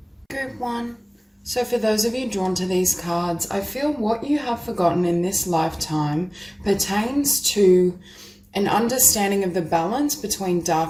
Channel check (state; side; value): identical; both; correlation 1.00